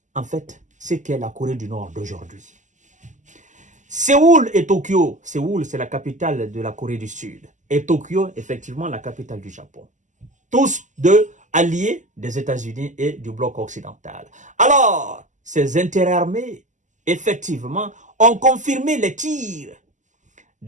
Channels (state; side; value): late; left; 0.36 ms